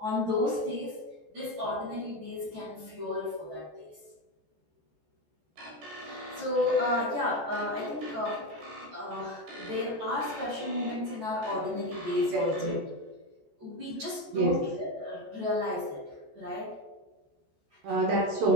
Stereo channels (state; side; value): late; left; 14 ms